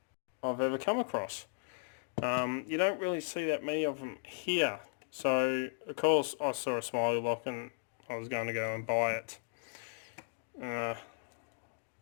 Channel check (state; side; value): silent; right; digital silence